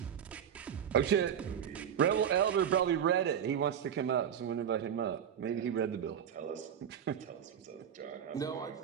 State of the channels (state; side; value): quieter; left; 8.7 dB